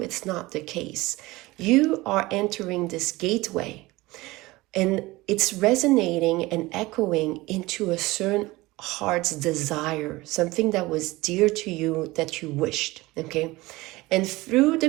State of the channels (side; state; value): left; quieter; 20.4 dB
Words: it's not the case. You are entering this gateway, and it's resonating and echoing into a certain heart's desire, something that was dear to you that you wished, okay? And through